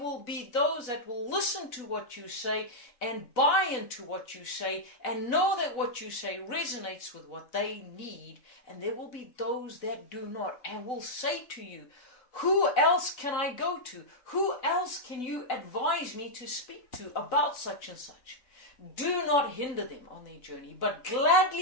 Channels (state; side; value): late; right; 4.0 ms